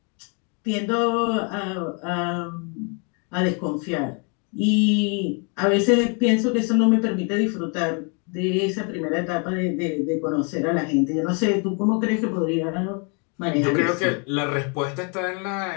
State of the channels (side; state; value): right; quieter; 36.4 dB